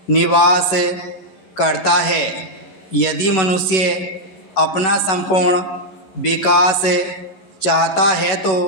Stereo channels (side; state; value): right; late; 11 ms